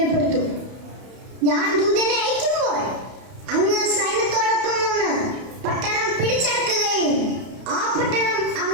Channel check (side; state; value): left; late; 31 ms